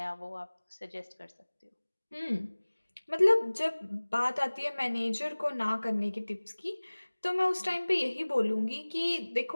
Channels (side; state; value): both; inverted; correlation -1.00